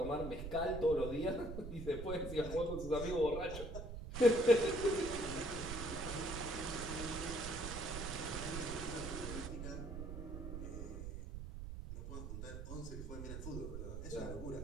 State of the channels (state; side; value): noise; right; rumble, 7 dB below the sound